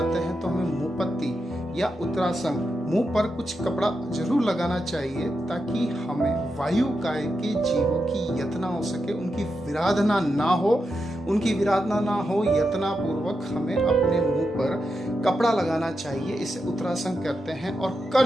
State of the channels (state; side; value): normal; both; correlation 0.87